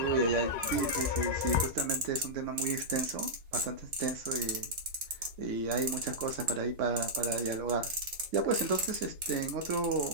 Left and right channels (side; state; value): left; late; 3.6 ms